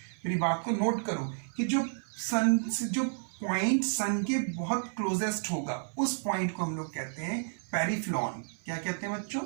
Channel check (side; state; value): left; silent; 57 dB below the other